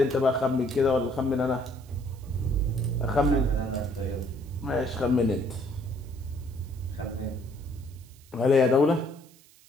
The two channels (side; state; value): right; noise; hiss, 27 dB below the sound